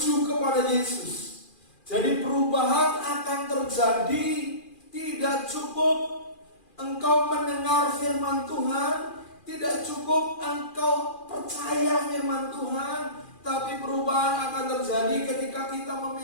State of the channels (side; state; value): right; late; 2.4 ms